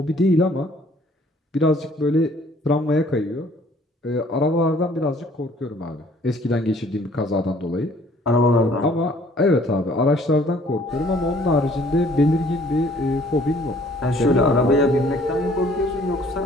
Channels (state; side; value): normal; both; correlation 0.58